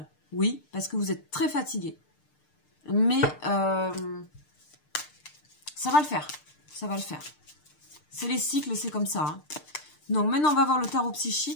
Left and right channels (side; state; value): right; late; 6.6 ms